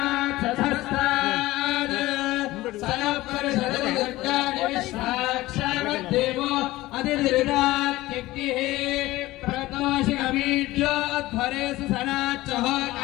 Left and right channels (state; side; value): quieter; right; 17.9 dB